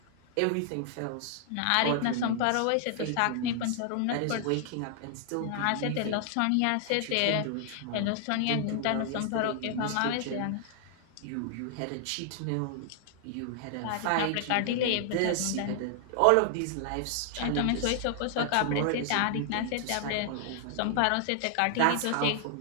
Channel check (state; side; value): different; both; correlation 0.00